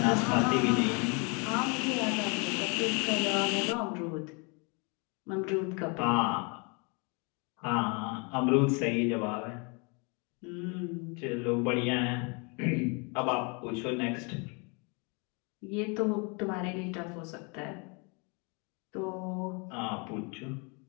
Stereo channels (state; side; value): quieter; right; 32.7 dB